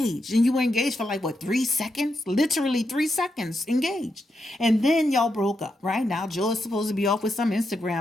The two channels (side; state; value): both; normal; correlation 0.84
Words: And you were engaged for like, what, 3 seconds? Literally 3 seconds engaged. And then y'all broke up, right? Now Joe is supposed to be off with some